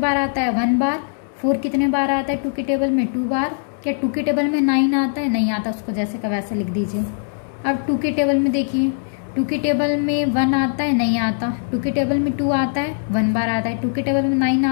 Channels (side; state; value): right; silent; 65 dB below the other